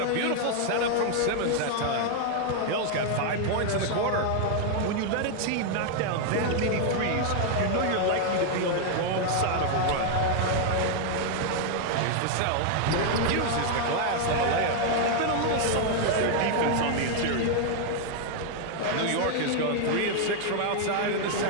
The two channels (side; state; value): both; different; correlation 0.00